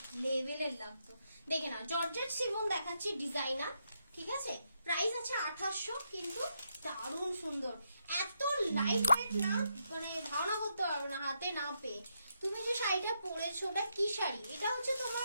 লেভেলের লাগতো। দেখে না, জর্জেট শিফন দেখাচ্ছি ডিজাইনার, ঠিক আছে? প্রাইস আছে 2800, কিন্তু দারুণ সুন্দর, এত লাইট ওয়েট না, মানে ধারণা করতে পারবে না হাতে না পেয়ে। তুমি যে শাড়িটা পরেছো ওটা কি শাড়ি? এটা হচ্ছে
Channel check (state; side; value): inverted; both; correlation -0.81